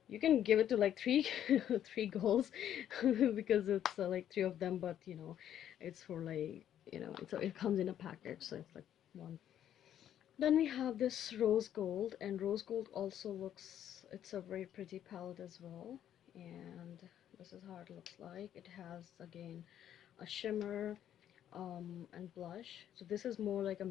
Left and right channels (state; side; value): quieter; right; 10.5 dB